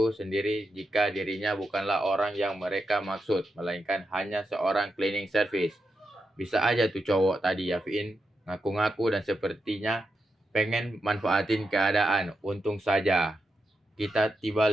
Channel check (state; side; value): normal; both; correlation 0.86